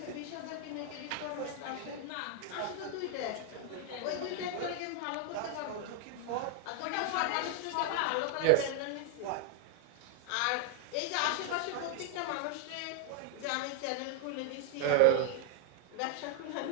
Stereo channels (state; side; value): different; both; correlation 0.00